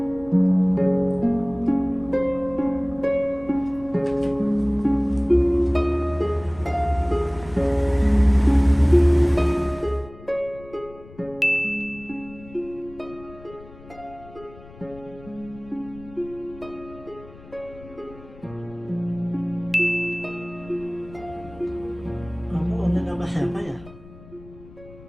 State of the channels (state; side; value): noise; left; rumble, 20 dB below the sound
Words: Kamu online sama siapa ya?